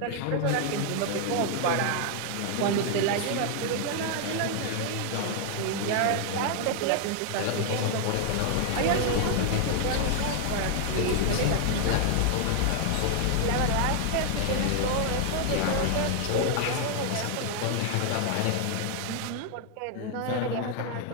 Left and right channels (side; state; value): both; different; correlation 0.00